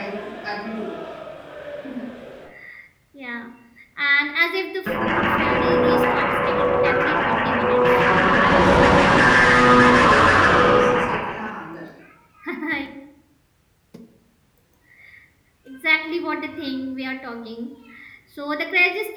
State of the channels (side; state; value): both; identical; correlation 1.00